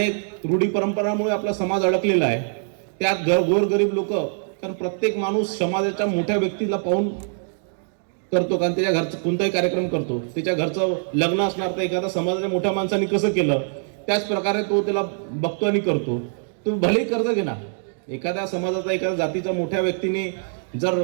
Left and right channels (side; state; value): left; silent; digital silence